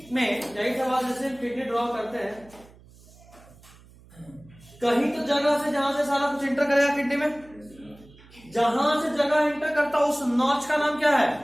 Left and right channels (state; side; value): noise; right; hum, 24 dB below the sound